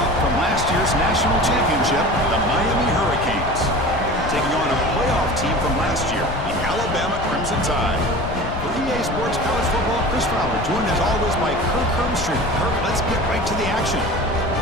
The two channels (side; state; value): left; noise; rumble, 8 dB below the sound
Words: from last year's national championship, the Miami Hurricanes, taking on a playoff team from last year, the Alabama Crimson Tide. For EA Sports College Football, Chris Fowler, joined as always by Kirk Hermstreet. Kirk, let's get right to the action.